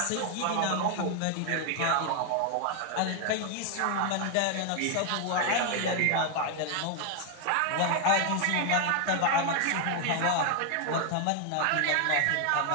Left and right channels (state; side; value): different; both; correlation 0.00